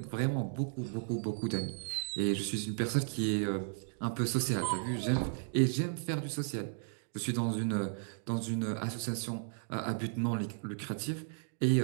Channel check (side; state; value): left; silent; digital silence